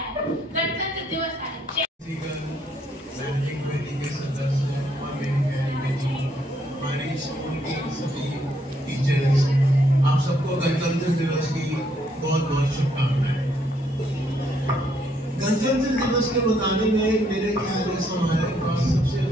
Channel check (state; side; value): normal; both; correlation 0.71